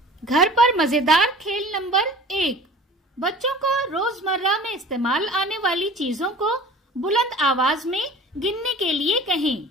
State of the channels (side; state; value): both; normal; correlation 0.43